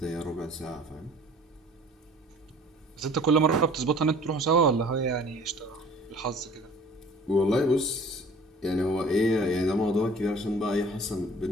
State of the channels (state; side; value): normal; both; correlation 0.49